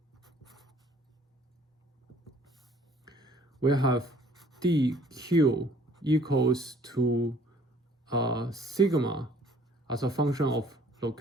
we have dq equals to sigma as a function of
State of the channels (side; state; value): both; normal; correlation 0.57